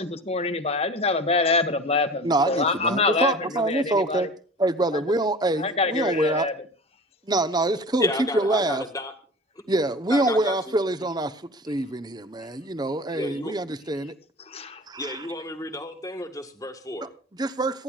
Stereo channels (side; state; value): both; normal; correlation 0.38